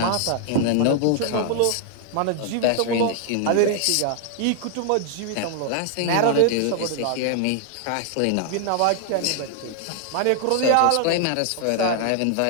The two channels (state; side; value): different; both; correlation 0.00